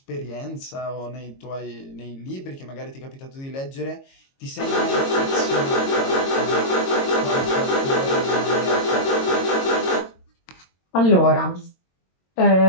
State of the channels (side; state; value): right; late; 22 ms